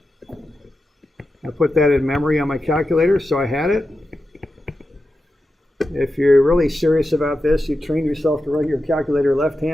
put that in memory on my calculator, so I had it. If you're really serious about this, you train yourself to run your calculator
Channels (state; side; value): normal; both; correlation 0.90